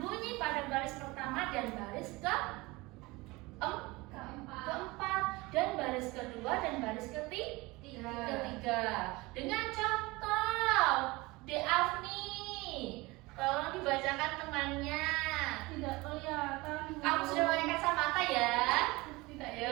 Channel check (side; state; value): left; quieter; 22.6 dB